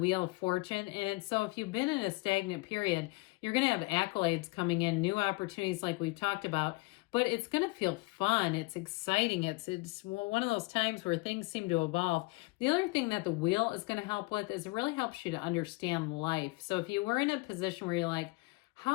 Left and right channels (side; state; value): right; quieter; 24.6 dB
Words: of Fortune. And so if you've been in a stagnant period, you're going to have accolades coming in, new opportunities like we've talked about. But it's going to feel fun. It's exciting. It's one of those times where things seem to evolve. The other thing that the wheel is going to help with is it really helps you to understand life. So if you were in a position where you're like,